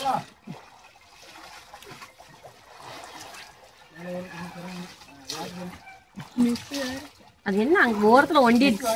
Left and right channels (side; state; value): both; identical; correlation 1.00